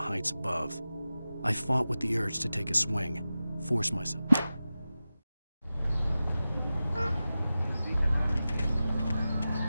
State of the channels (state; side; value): inverted; both; correlation -0.95